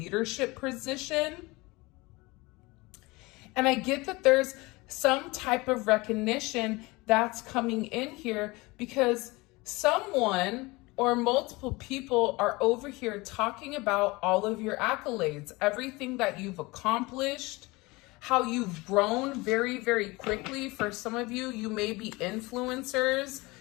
position. And I get that there's some type of recognition that's coming in here because someone or multiple people are over here talking about all of your accolades, everything that you've accomplished, how you've grown very, very quickly. For some of you, you may be influencers.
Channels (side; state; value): right; quieter; 23.2 dB